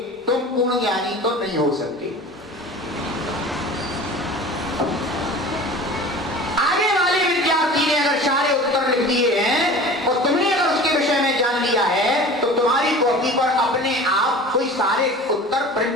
तुम पूर्ण ज्ञानी तो नहीं हो सकते। आगे वाले विद्यार्थी ने अगर सारे उत्तर लिख दिए हैं और तुमने अगर उसके विषय में जान लिया है, तो तुम्हारी कॉपी पर अपने आप कोई सारे उत्तर प्रिंट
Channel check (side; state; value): both; normal; correlation 0.39